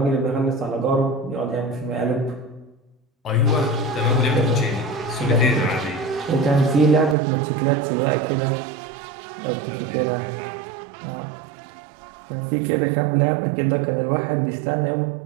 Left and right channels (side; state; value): left; drops out; at 7.2 s